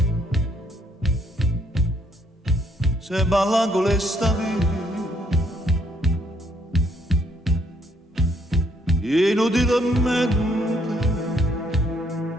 se balla con le stavi, inutilmente,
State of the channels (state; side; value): normal; both; correlation 0.69